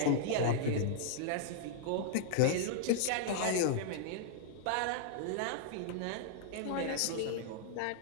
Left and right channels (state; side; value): different; both; correlation -0.01